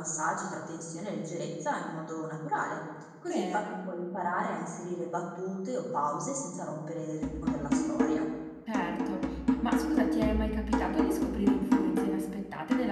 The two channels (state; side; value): identical; both; correlation 1.00